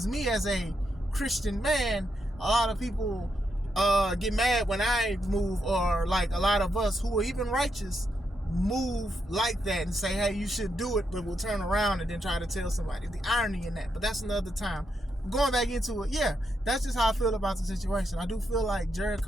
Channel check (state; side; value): normal; both; correlation 0.81